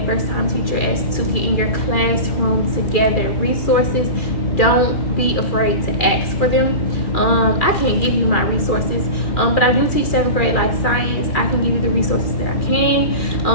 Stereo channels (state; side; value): late; right; 2.4 ms